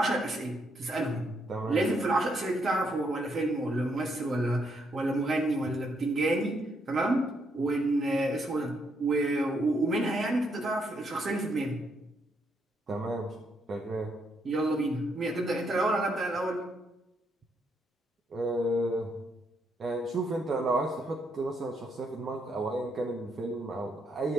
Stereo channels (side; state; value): both; normal; correlation 0.76